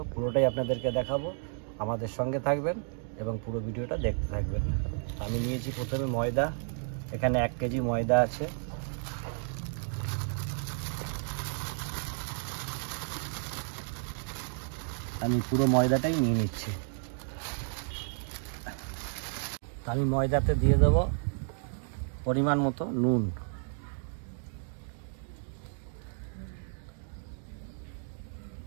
পুরোটাই আপনাদেরকে দেখাবো। আমাদের সঙ্গে থাকবেন এবং পুরো ভিডিওটা দেখতে থাকবেন। আমি নিয়েছি প্রথমে ময়দা, এখানে 1 কেজি ময়দা আছে। আমি পুরো ময়দাটাই নিয়ে নিচ্ছি। আমি ময়দাতে দিয়ে দেব পরিমাণ মতো নুন,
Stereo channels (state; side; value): silent; left; 56 dB below the other